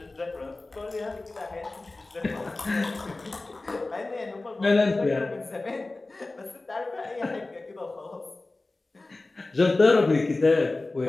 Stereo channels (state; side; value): quieter; right; 3.1 dB